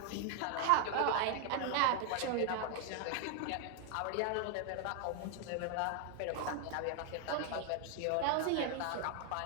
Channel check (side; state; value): both; different; correlation 0.00